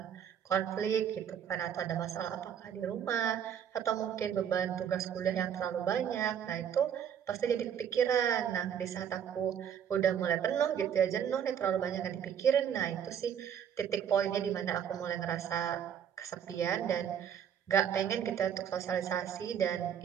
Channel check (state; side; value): quieter; left; 8.7 dB